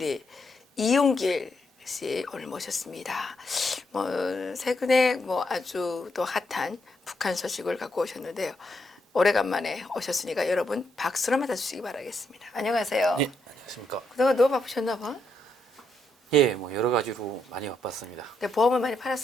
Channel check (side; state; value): both; normal; correlation 0.79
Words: 이용길 씨 오늘 모셨습니다. 최근에 아주 또 핫한 북한 소식을 갖고 오셨는데요. 오래간만에 오셨으니까 여러분 박수로 맞아주시기 바라겠습니다. 안녕하세요. 네, 안녕하십니까. 그동안 너무 바쁘셨나 봐. 예, 여러 가지로 많이 바빴습니다. 보험을 많이